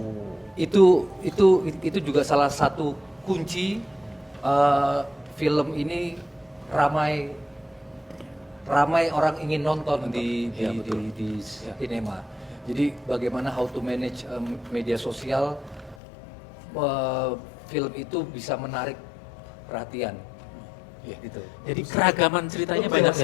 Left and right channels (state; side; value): drops out; right; at 16.0 s